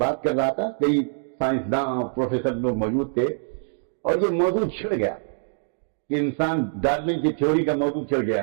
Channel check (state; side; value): silent; left; digital silence